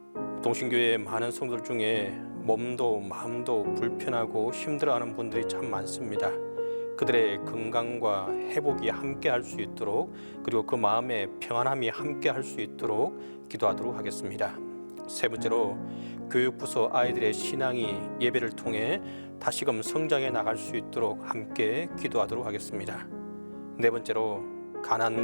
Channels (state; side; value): inverted; both; correlation -1.00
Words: 동신교회의 많은 성도들 중에 몸도 마음도 불편하고 힘들어하는 분들이 참 많습니다. 그들의 건강과 회복이 함께 할 수 있도록, 그리고 그 마음의 평안함이 함께 할 수 있도록 기도하도록 하겠습니다. 세 번째로 교육부서 아이들의 신앙이 예배를 통해 다시금 성장해 나갈 수 있도록 함께 기도하도록 하겠습니다. 네 번째로